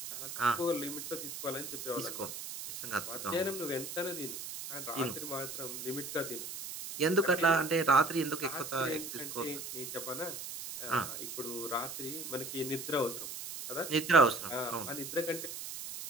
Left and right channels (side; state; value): right; noise; hiss, 8 dB below the sound